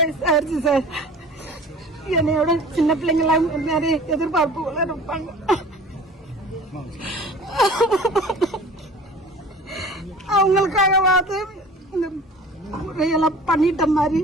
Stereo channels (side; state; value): both; normal; correlation 0.43